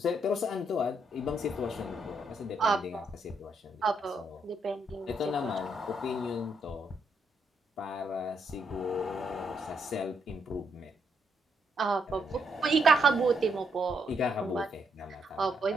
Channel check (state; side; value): normal; both; correlation 0.76